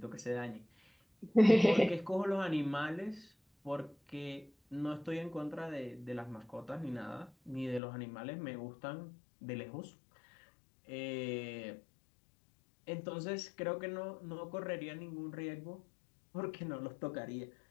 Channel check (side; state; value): right; drops out; at 7.8 s